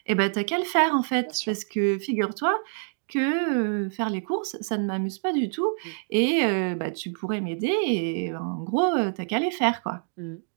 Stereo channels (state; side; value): silent; left; digital silence